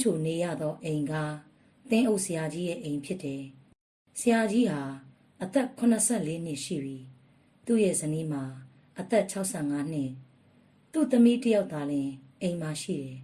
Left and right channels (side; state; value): both; identical; correlation 1.00